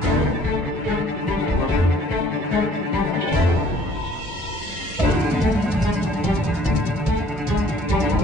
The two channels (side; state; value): both; normal; correlation 0.56